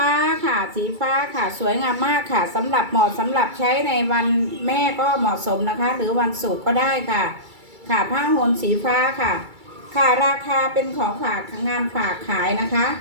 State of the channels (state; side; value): late; left; 2.3 ms